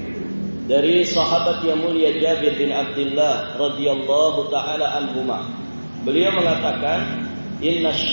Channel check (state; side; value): inverted; both; correlation -1.00